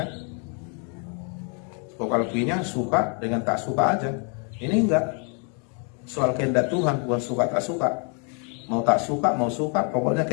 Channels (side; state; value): right; quieter; 38.6 dB